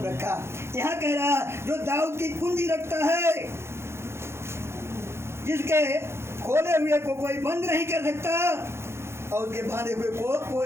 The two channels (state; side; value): late; left; 0.12 ms